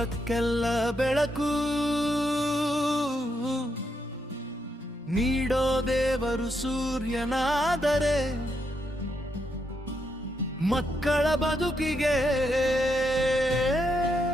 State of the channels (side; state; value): both; normal; correlation 0.80